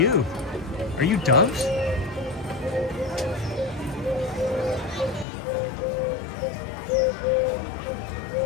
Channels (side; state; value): right; drops out; at 5.2 s